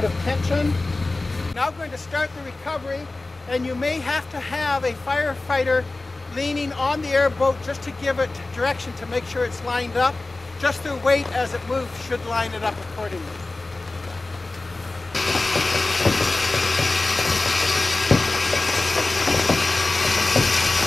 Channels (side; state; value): right; quieter; 3.2 dB